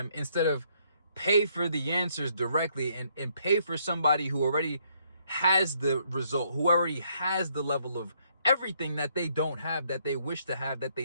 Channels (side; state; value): both; inverted; correlation -0.70